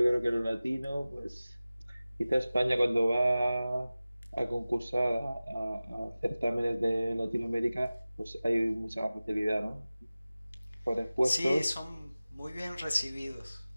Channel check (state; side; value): inverted; both; correlation -0.97